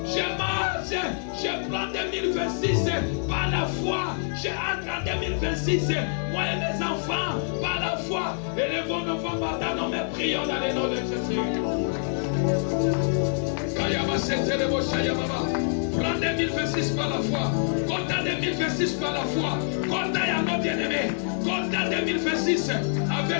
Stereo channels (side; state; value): right; silent; digital silence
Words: je marche, je prends 2026 par la foi, je entre en 2026, moi et mes enfants, par la foi, élevons nos femmes matin, nous me prions dans le nom de Jésus. Prends 2026 par la foi. Compte 2026 par la foi. Compte à nos bien-aimés. Compte 2026